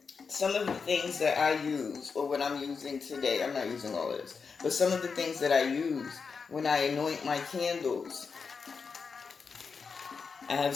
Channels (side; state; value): right; quieter; 5.3 dB